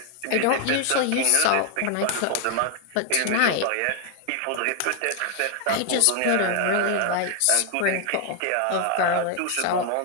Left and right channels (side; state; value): both; different; correlation 0.00